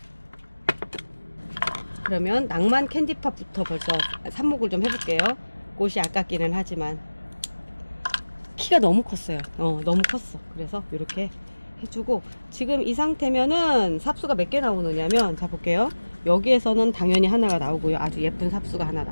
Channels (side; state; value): both; inverted; correlation -1.00